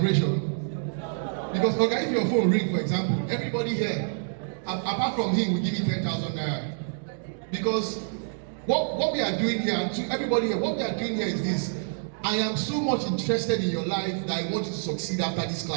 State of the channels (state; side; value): silent; left; digital silence